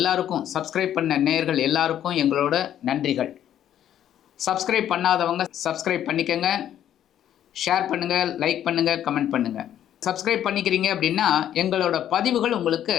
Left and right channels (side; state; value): right; quieter; 10.8 dB